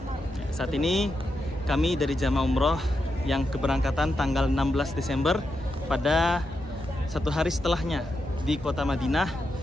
Saat ini kami dari jamaah umroh yang keberangkatan tanggal 16 Desember pada satu hari setelahnya di kota Madinah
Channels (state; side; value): normal; both; correlation 0.85